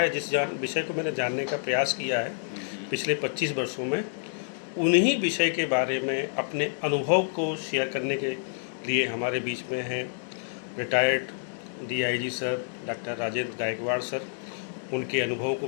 जिस विषय को मैंने जानने का प्रयास किया है पिछले 25 वर्षों में, उन्हीं विषय के बारे में अपने अनुभव को शेयर करने के लिए हमारे बीच में हैं retired DIG sir doctor Rajendra Gaikwad sir. उनके अनुभव को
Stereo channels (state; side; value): silent; right; digital silence